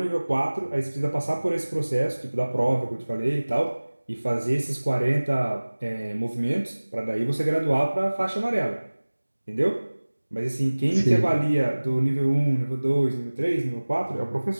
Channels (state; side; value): inverted; both; correlation -1.00